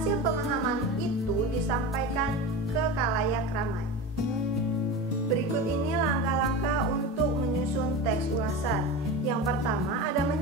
pemahaman itu disampaikan ke khalayak ramai. Berikut ini langkah-langkah untuk menyusun teks ulasan. Yang pertama ada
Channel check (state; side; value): normal; both; correlation 0.27